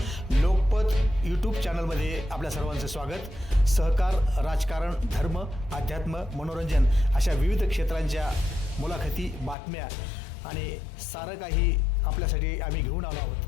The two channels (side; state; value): right; drops out; at 9.6 s